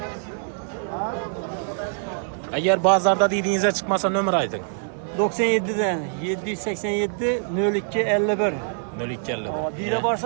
Eğer bazarda dediğinize çıkmasa nömrə aytın. 97'den 787 02 51. 0250. Biri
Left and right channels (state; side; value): silent; left; 62 dB below the other